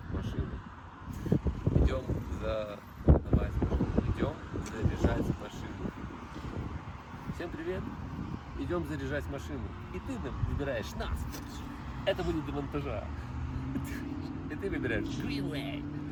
машину. Идем задавать машину. Идем заряжать машину. Всем привет! Идем заряжать машину. И ты выбираешь нас. Это будет до монтажа. И ты выбираешь Greenway.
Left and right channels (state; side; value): identical; both; correlation 1.00